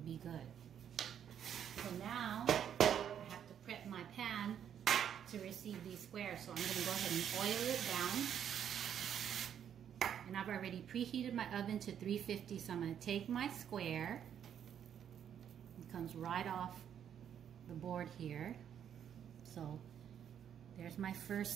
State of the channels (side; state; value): left; quieter; 9.1 dB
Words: good. So now I have to prep my pan to receive these squares. So I'm going to go ahead and oil it down. And I've already preheated my oven to 350, so I'm going to take my square. It comes right off the board here. So there's my